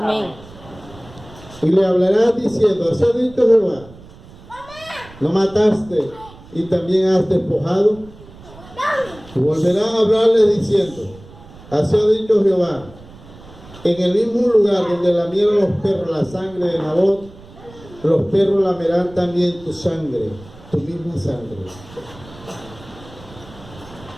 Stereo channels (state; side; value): noise; right; rumble, 20 dB below the sound